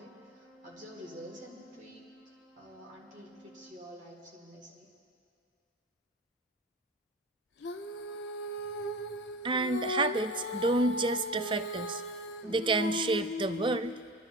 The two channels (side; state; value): both; normal; correlation 0.31